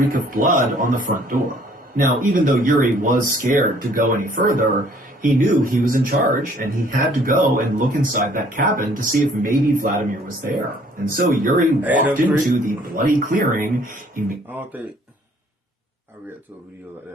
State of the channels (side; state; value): both; normal; correlation 0.59